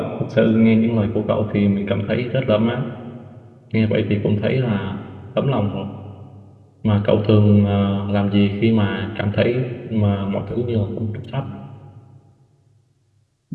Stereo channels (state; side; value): identical; both; correlation 1.00